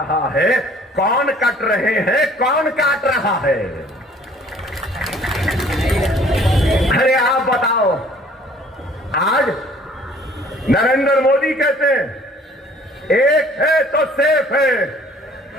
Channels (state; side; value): normal; both; correlation 0.55